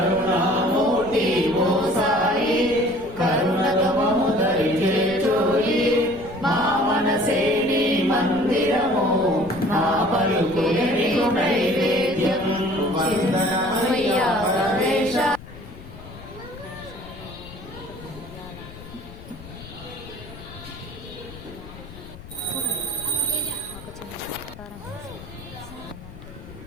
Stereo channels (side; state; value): left; noise; rumble, 16 dB below the sound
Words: ఓ సాయి కరుణతో మము దరి చేర్చోయి మా మనసే నీ మందిరము నా పలుకులే నీకు నైవేద్యం వందనమయ్యా గణేశ. ఒక చిన్న సత్కారం వేసేది ఏంటంటే